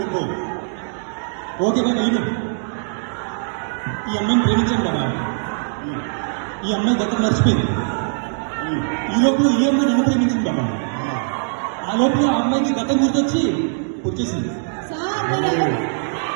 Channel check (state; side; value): silent; left; digital silence